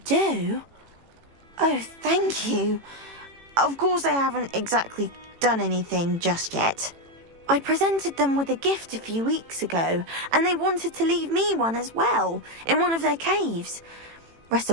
Oh, thank you. Of course I haven't exactly done anything just yet. I presented them with a gift a few weeks ago, and they wanted to leave me one as well, in one of their caves.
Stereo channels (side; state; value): left; late; 18 ms